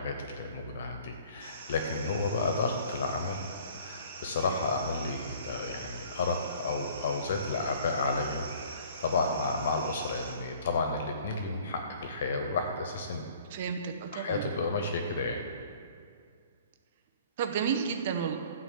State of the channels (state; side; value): inverted; both; correlation -0.52